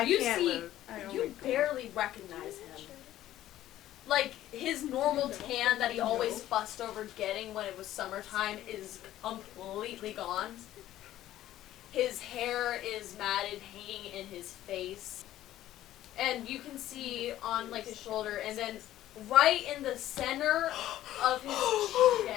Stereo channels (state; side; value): quieter; right; 13.6 dB